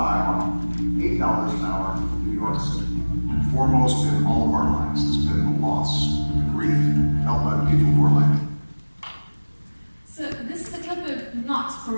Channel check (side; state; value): both; inverted; correlation -1.00